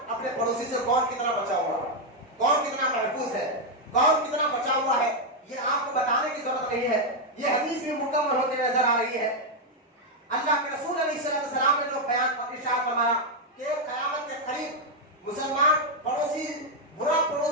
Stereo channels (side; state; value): both; normal; correlation 0.01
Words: اپنے پڑوسی سے کون کتنا بچا ہوا ہے، کون کتنا محفوظ ہے، کون کتنا بچا ہوا ہے، یہ آپ کو بتانے کی ضرورت نہیں ہے، یہ حدیث بھی مکمل ہوتے نظر آ رہی ہے۔ اللہ کے رسول علیہ السلام نے جو بیان ارشاد فرمایا کہ قیامت کے قریب مسلمان پڑوسی برا